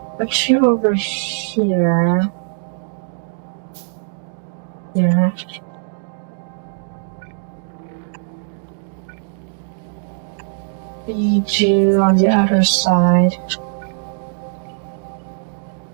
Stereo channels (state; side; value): silent; left; digital silence